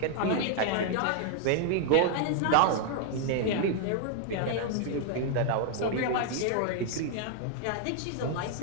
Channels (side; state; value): both; different; correlation 0.00